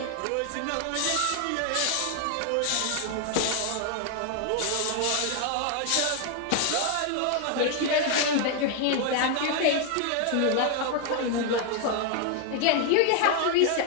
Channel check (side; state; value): both; different; correlation 0.00